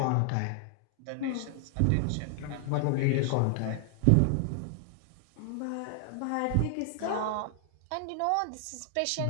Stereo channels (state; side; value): different; both; correlation 0.00